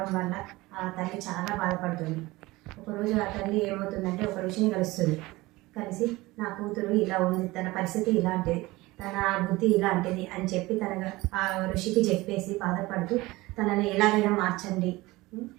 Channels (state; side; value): quieter; left; 20.4 dB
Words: వల్ల ఆ తల్లి చాలా బాధపడుతుంది. ఒకరోజు ఆ తల్లి ఏమవుతుందంటే ఒక ఋషిని కలుస్తుంది. కలిసి నా కూతురు ఇలా ఉంది, తన పరిస్థితి ఇలాంటిది, తన బుద్ధి ఇలాంటిది అని చెప్పి తన ఆ ఋషికి చెప్పేసి బాధపడుతూ తనని ఎలాగైనా మార్చండి,